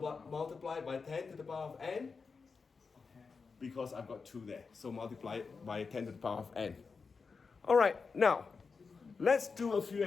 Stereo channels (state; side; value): quieter; right; 4.9 dB